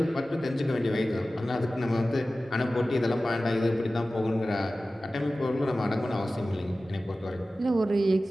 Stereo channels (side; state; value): both; normal; correlation 0.96